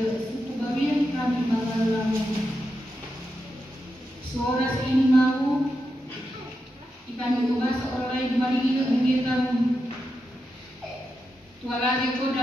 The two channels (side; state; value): both; normal; correlation 0.87